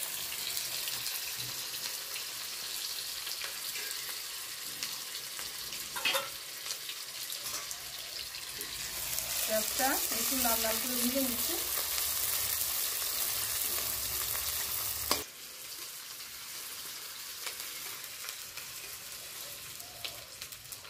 পেঁয়াজটা একটু লাল লাল করে ভেজে নিচ্ছি।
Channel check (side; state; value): both; identical; correlation 1.00